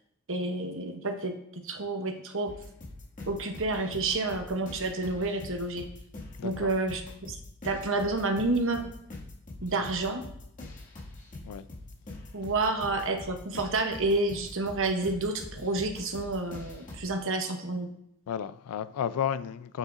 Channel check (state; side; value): normal; both; correlation 0.07